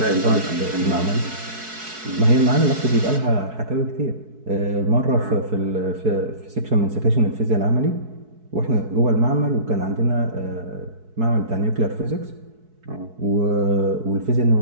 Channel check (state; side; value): late; left; 4.6 ms